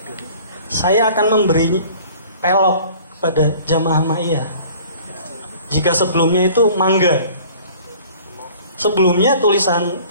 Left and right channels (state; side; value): inverted; both; correlation -0.49